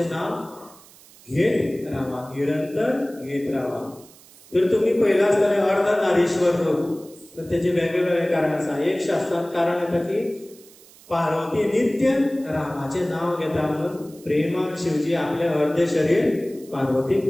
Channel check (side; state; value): right; noise; hiss, 24 dB below the sound